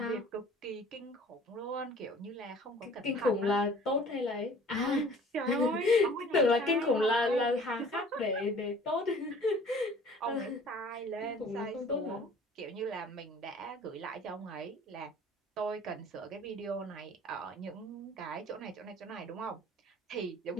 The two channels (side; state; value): both; normal; correlation 0.49